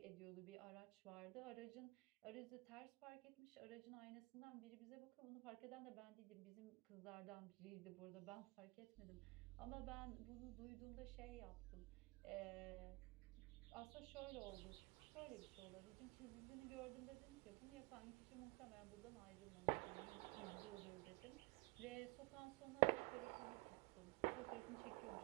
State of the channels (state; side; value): quieter; left; 25.7 dB